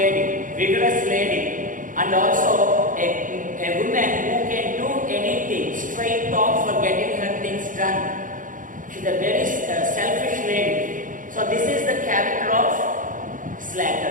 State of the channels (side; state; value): left; late; 0.38 ms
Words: vigorous lady, and also a woman who can do anything, straight talk for getting her things done. She is a very character of